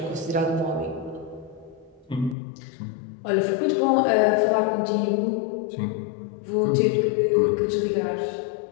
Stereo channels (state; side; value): drops out; right; at 2.4 s